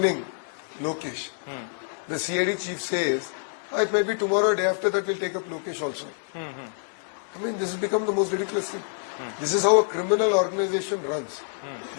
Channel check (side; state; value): right; silent; 60 dB below the other